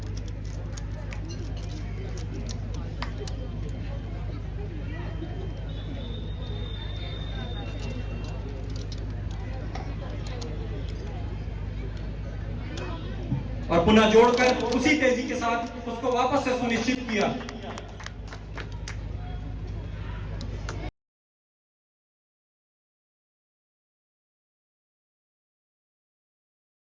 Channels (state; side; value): identical; both; correlation 1.00